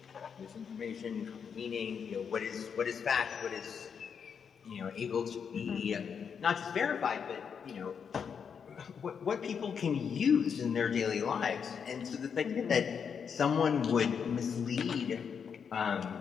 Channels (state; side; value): quieter; right; 6.9 dB